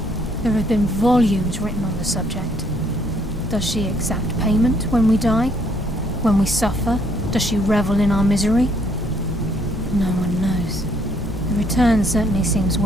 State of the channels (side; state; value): both; normal; correlation 0.67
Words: There have been volumes written on the subject. Does she exact payment when we die? When we suffer? Does she revel in our misery? No one knows. The return certainly seems